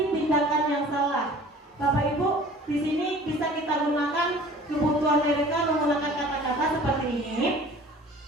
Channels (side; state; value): both; normal; correlation 0.47